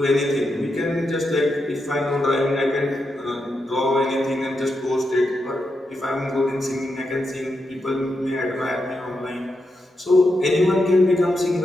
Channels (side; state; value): both; normal; correlation 0.85